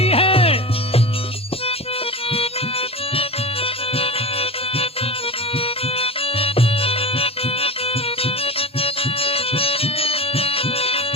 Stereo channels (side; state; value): both; normal; correlation 0.27